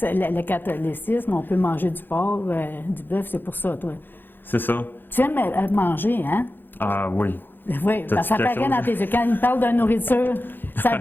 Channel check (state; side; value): late; right; 0.095 ms